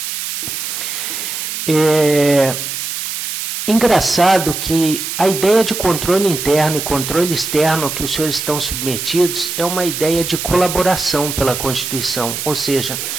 Engraçado que a ideia de controle interno e controle externo que os senhores estão submetidos é uma ideia de colaboração pela Constituição, ou seja,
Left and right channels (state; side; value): noise; right; hiss, 5 dB below the sound